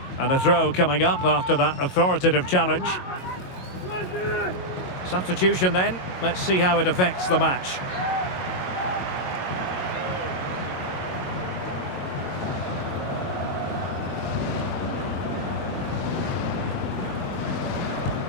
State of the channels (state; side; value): late; right; 22 ms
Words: And a throw coming up after that authoritative challenge. Substitution then. Let's see how it affects the match.